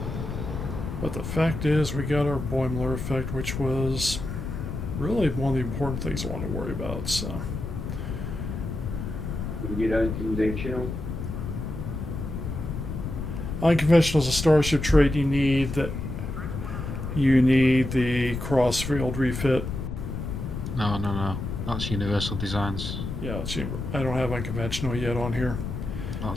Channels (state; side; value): noise; left; rumble, 5 dB below the sound